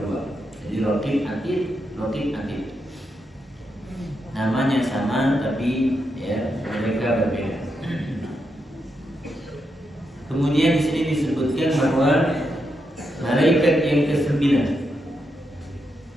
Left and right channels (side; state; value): both; normal; correlation 0.83